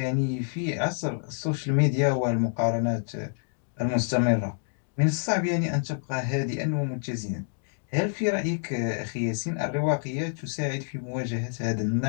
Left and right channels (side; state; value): right; silent; 60 dB below the other